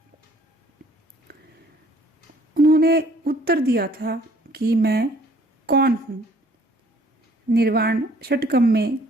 उन्होंने उत्तर दिया था कि मैं कौन हूँ। निर्वाण षटकम में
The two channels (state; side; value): normal; both; correlation 0.58